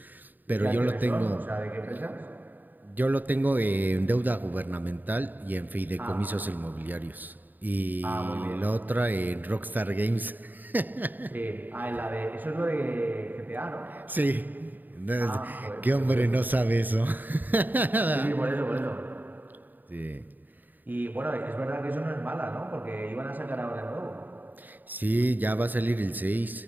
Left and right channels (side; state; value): left; late; 0.088 ms